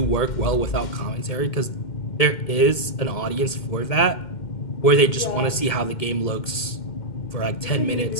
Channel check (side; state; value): right; late; 2.1 ms